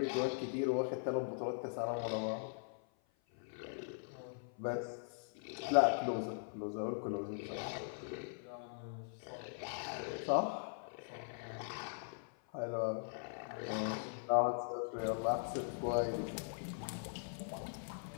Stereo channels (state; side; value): silent; right; 51 dB below the other